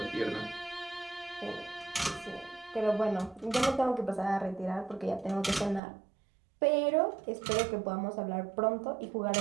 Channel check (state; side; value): drops out; left; at 5.8 s